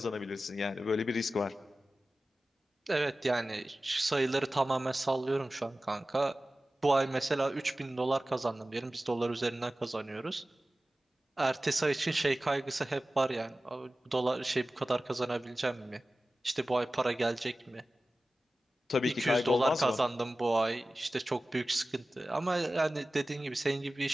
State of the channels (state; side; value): normal; both; correlation 0.96